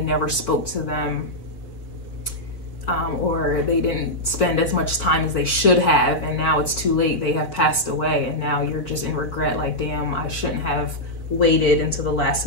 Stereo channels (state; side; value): late; right; 4.8 ms